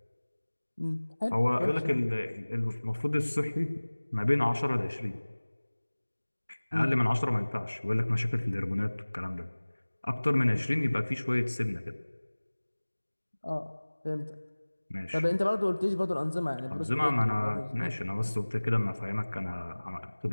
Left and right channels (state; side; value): inverted; both; correlation -1.00